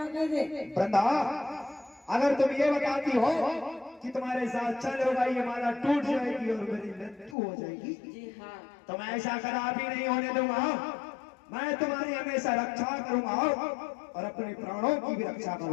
दे। वृंदा, अगर तुम ये बताती हो कि तुम्हारे साथ चल होगा, ये माला टूट जाएगी और मेरी मृत्यु हो जाएगी, जी हाँ, तो मैं ऐसा कदापि नहीं होने दूंगा। मैं तुम्हारी हमेशा रक्षा करूंगा और अपने प्राणों की भी रक्षा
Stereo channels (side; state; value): right; drops out; at 7.4 s